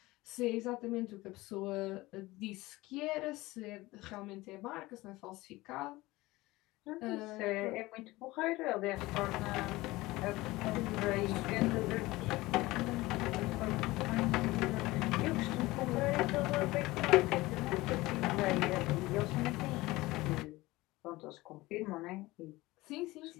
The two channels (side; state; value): right; quieter; 19.8 dB